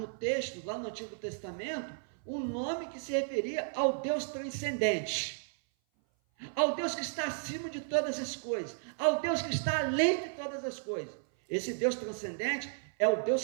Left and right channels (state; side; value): silent; left; 55 dB below the other